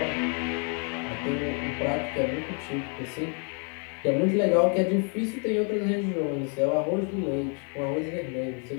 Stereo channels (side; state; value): right; quieter; 40.0 dB